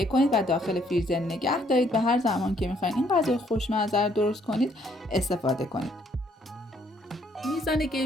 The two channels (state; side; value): normal; both; correlation 0.67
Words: کنید و داخل فریزر نگه دارید و هر زمان که میخواین این غذای خوشمزه رو درست کنید استفاده کنید. میزان